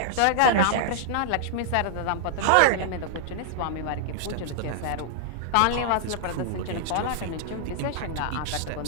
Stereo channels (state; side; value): different; both; correlation -0.01